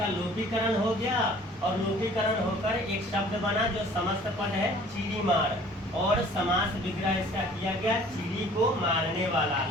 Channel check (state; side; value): normal; both; correlation 0.52